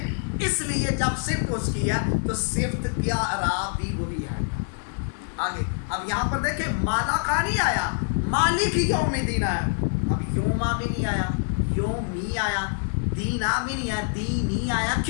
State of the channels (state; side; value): silent; right; 61 dB below the other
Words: اس لیے جب صفت اس کی ہے تو صفت کیا اعراب بھی وہی ہے. آگے اب یہاں پر دیکھیں مالا کا نہیں آیا، مالک یوم الدین آیا. اب یوما بھی نہیں آیا، یومی آیا، دینا بھی نہیں آیا، دینی آیا.